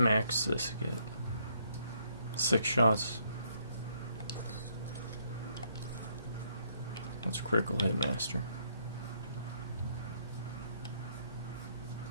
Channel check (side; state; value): both; inverted; correlation -0.70